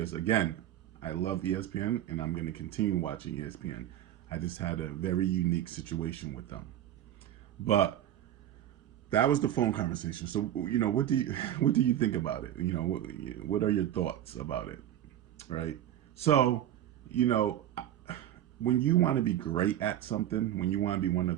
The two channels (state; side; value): quieter; left; 11.8 dB